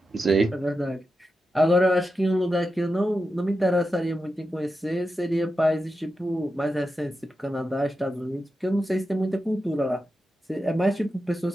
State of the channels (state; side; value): normal; both; correlation 0.89